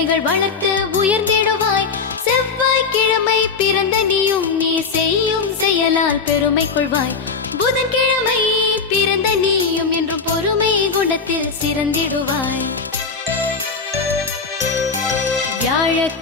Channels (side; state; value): right; quieter; 5.0 dB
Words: வளர்த்து உயர்ந்திடுவாய். செவ்வாய்க்கிழமை பிறந்த நீயும் நீ செய்யும் செயலால் பெருமை கொள்வாய். புதன்கிழமை பிறந்த நீயும் என்று பொறுமை குணத்தில் சிறந்திடுவாய்.